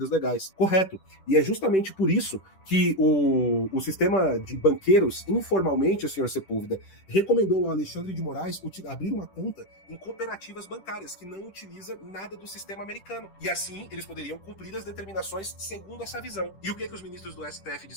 legais. Correto. E é justamente por isso que o sistema de banqueiros, informalmente, o Sr. Sepúlveda, recomendou ao Alexandre de Moraes abrir uma conta em cooperativas bancárias, que não utiliza nada do sistema americano. E assim, eles poderiam cumprir as determinações segundo essa visão. E o que os ministros do STF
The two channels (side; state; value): right; late; 10 ms